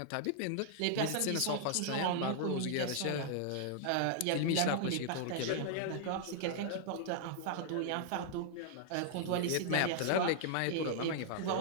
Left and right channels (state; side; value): different; both; correlation -0.01